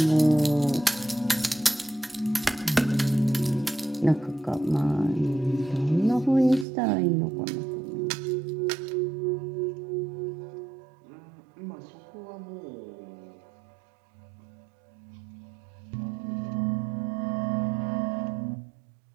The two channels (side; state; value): left; drops out; at 6.7 s